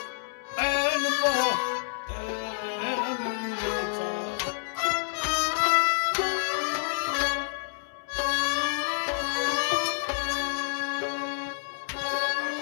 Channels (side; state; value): right; silent; 59 dB below the other